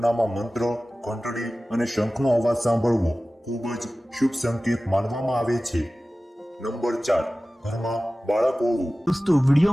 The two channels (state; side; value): normal; both; correlation 0.96